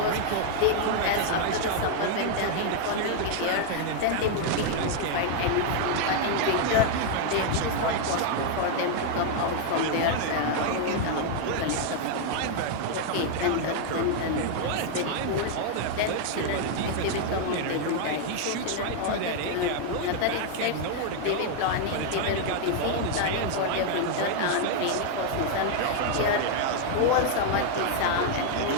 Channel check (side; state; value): both; different; correlation 0.00